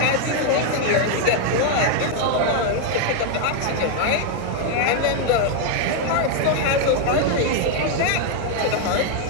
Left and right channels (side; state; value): both; different; correlation 0.00